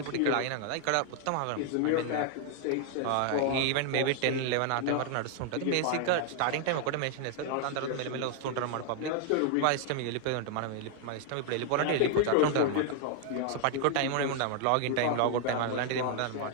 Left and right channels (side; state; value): both; different; correlation 0.00